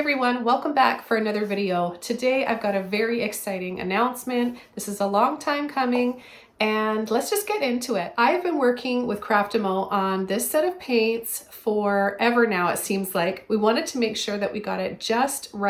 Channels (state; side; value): identical; both; correlation 1.00